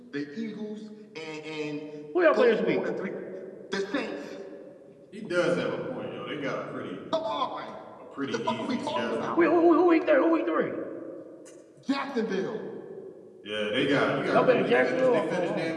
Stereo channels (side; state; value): both; identical; correlation 1.00